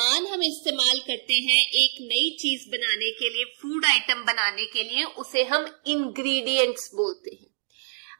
हम इस्तेमाल करते हैं एक नई चीज बनाने के लिए, फूड आइटम बनाने के लिए, उसे हम इंग्रेडिएंट्स बोलते हैं।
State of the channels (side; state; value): left; silent; digital silence